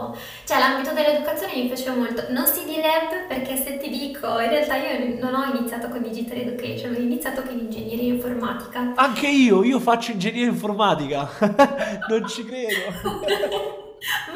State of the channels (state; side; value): identical; both; correlation 1.00